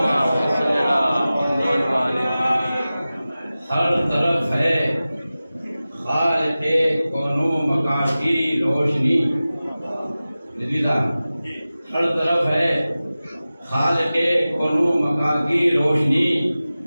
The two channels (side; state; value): both; inverted; correlation -0.96